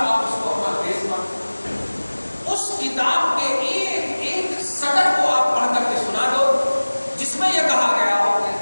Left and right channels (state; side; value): inverted; both; correlation -1.00